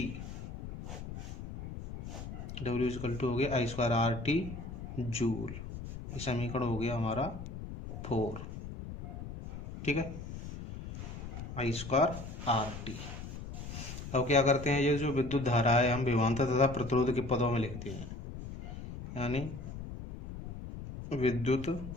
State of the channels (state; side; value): noise; left; rumble, 9 dB below the sound